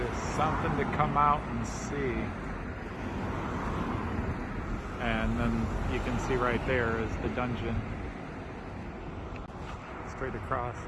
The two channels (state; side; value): identical; both; correlation 1.00